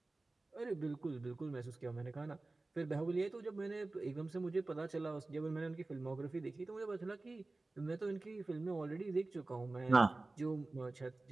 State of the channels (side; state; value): left; quieter; 3.2 dB